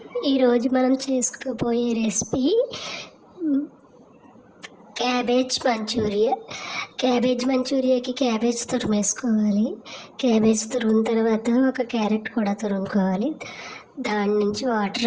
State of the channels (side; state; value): both; identical; correlation 1.00